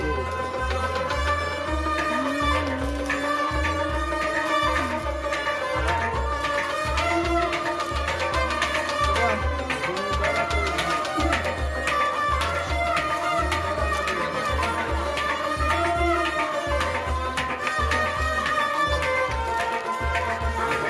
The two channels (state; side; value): identical; both; correlation 1.00